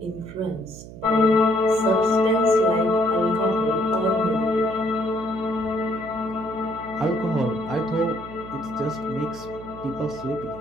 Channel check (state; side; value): noise; right; hum, 15 dB below the sound